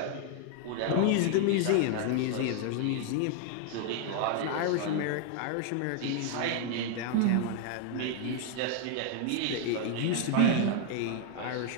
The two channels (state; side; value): different; both; correlation 0.00